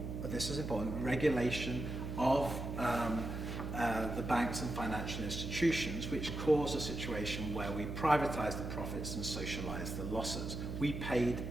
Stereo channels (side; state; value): right; noise; hum, 5 dB below the sound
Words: this is important, regulation of the banks and financial institutions, which caused a situation where we privatised the profits and socialised the losses. We paid